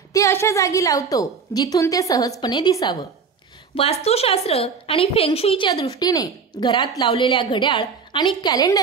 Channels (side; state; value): left; quieter; 5.6 dB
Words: ते अशा जागी लावतो जिथून ते सहजपणे दिसावं. वास्तुशास्त्र आणि फेंगशुईच्या दृष्टीने घरात लावलेल्या घड्याळ आणि